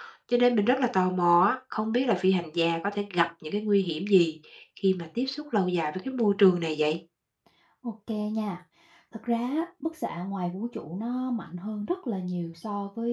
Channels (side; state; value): both; identical; correlation 1.00